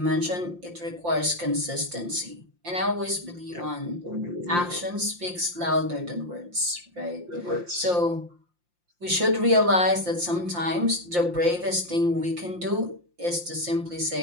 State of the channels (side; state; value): left; late; 5.7 ms